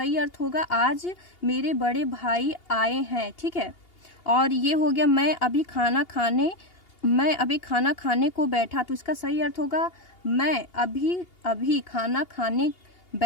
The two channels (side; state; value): right; late; 2.8 ms